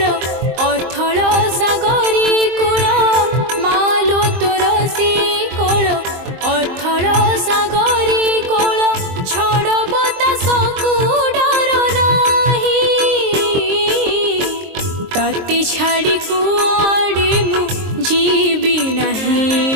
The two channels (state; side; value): late; left; 23 ms